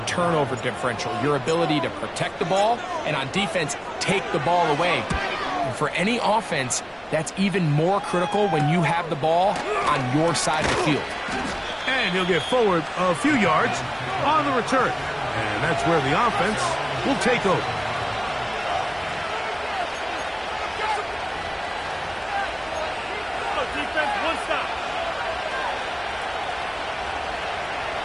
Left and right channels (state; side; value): identical; both; correlation 1.00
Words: turnover differential, your ability to protect the ball, and on defense, take the ball away. And for any offense, that's even more critical when you have the ball on your side of the field. And he'll get forward a few yards on the return. And that's where the offense will take over.